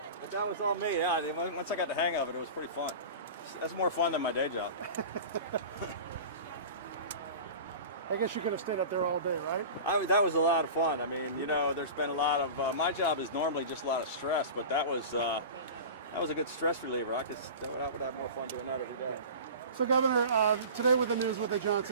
But that was all me. Yeah. Once I got the hang of it, it was pretty fun. That's more fun than my day job. I guess you could have stayed up there all day, right? That was a lot of fun. I mean, you know, there's been a lot of my job is normally just a lot of stress, but that was a good stress reliever. I would have more fun doing that every day. So, Governor, today with the news with the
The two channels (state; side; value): inverted; both; correlation -0.35